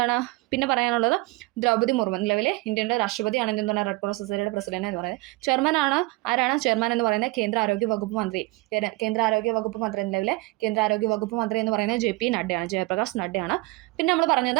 പിന്നെ പറയാനുള്ളത്? ദ്രൗപദി മുർമു നിലവിലെ ഇന്ത്യയുടെ രാഷ്ട്രപതിയാണ് എന്താണ് റെഡ് ക്രോസ് സൊസൈറ്റിയുടെ പ്രസിഡന്റ് എന്ന് പറയുന്നത്. ആരാണ് ചെയർമാൻ എന്ന് പറയുന്നത്? കേന്ദ്ര ആരോഗ്യ വകുപ്പ് മന്ത്രി. നിലവിലെ കേന്ദ്ര ആരോഗ്യ വകുപ്പ് മന്ത്രി എന്ന് പറയുന്നത് JP നഡ്ഡയാണ്, ജയപ്രകാശ് നഡ്ഡയാണ്. പിന്നെ നമ്മൾ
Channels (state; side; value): quieter; left; 22.7 dB